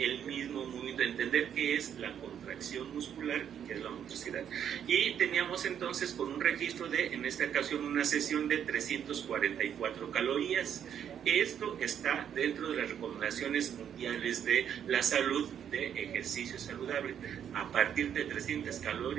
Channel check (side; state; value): left; quieter; 9.0 dB